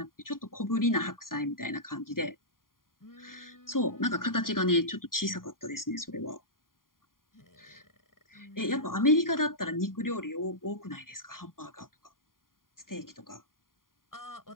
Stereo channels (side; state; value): right; late; 0.91 ms